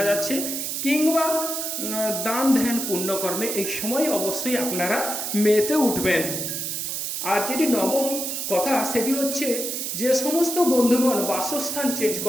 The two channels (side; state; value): right; noise; hiss, 3 dB below the sound